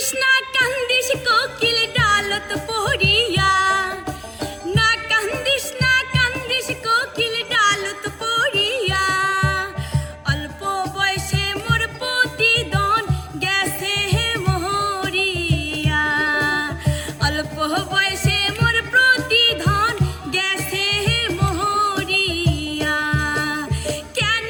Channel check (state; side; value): identical; both; correlation 1.00